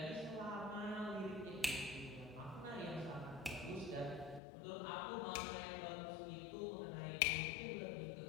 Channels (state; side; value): drops out; right; at 4.4 s